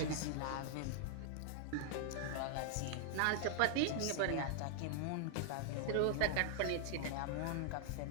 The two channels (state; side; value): different; both; correlation -0.01